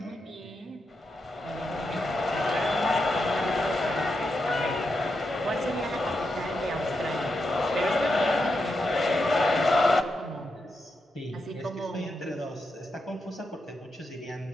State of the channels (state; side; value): normal; both; correlation 0.85